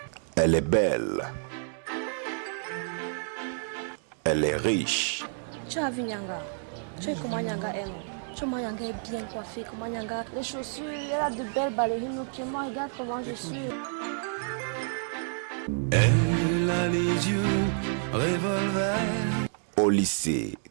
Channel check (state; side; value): silent; left; digital silence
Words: Elle est belle. Elle est riche. Tu as vu Nyanga? Tu sais comment Nyanga aime? Tu vois, Nyanga est bien coiffée. Comment Nyanga, les chaussures, elle a de belles ballerines aux pieds. Moi, regarde comment je suis. Elle a les yeux revolver. Au lycée,